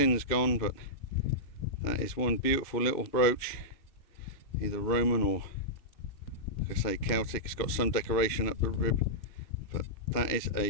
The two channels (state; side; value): late; right; 2.8 ms